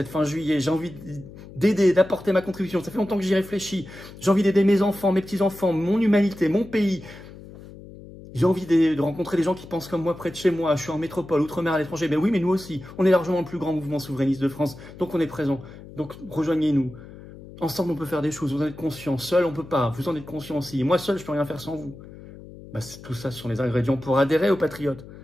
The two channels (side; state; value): left; noise; hum, 17 dB below the sound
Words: fin juillet. J'ai envie d'aider, d'apporter ma contribution. Ça fait longtemps que j'y réfléchis. J'ai envie d'aider mes enfants, mes petits-enfants, mon humanité, mon pays. J'ai envie de rencontrer des gens qui pensent comme moi près de chez moi. Je suis en métropole, outre-mer, à l'étranger. Mais oui, mais nous aussi. On est largement le plus grand mouvement souverainiste de France. Donc on est présent. Donc rejoignez-nous. Ensemble, on peut faire des choses. Vous en êtes conscients. Seul, on peut pas. Vous en êtes conscients aussi. Et moi, seul, je peux rien faire sans vous. Tout ça, ce sont les ingrédients pour adhérer aux Patriotes.